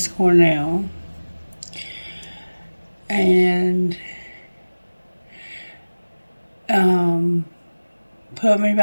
Cornell. And Put Me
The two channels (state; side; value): inverted; both; correlation -1.00